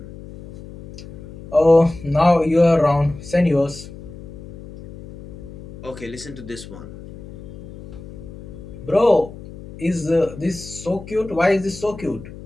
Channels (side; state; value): left; noise; hum, 15 dB below the sound